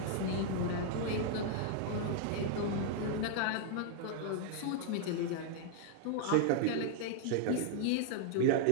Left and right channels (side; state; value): both; different; correlation 0.00